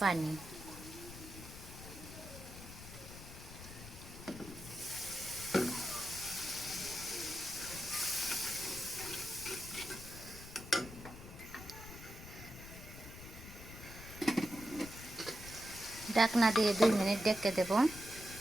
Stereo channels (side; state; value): left; noise; rumble, 13 dB below the sound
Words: পানি। ঢাকনা দিয়ে 2 মিনিট ঢেকে দেব।